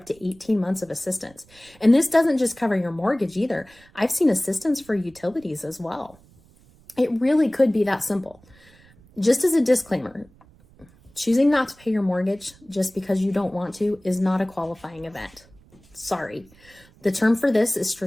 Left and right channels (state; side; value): noise; right; rumble, 27 dB below the sound